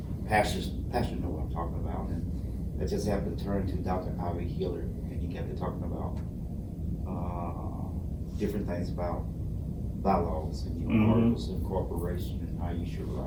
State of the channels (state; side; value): identical; both; correlation 1.00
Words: pastors know what I'm talking about, and I just happened to turn to Dr. Ivy Healer, and he kept talking about different things about bylaws and articles of incorporation and how you should